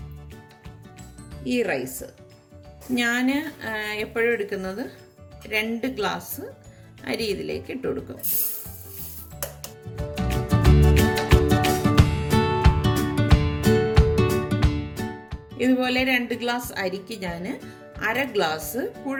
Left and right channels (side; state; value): both; identical; correlation 1.00